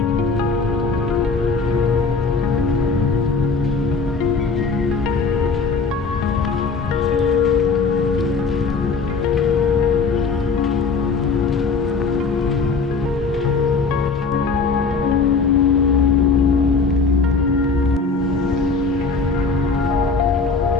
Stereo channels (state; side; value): quieter; right; 4.6 dB